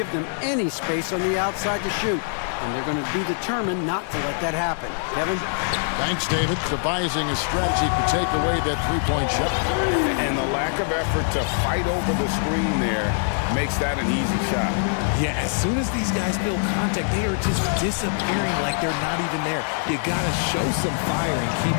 them any space on the outside to shoot. And they're going to be determined not to let that happen. Kevin? Thanks, David. Devising a strategy to take away that three-point shot. And the lack of effort to fight over the screen there makes that an easy shot. Yeah, as soon as these guys feel contact, they are just disappearing like they're not even there. You got to show some fire and keep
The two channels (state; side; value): silent; right; 55 dB below the other